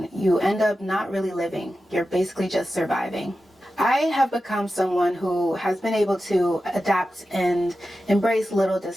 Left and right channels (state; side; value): normal; both; correlation 0.92